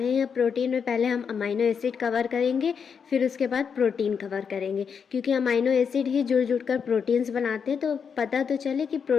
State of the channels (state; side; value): quieter; right; 6.6 dB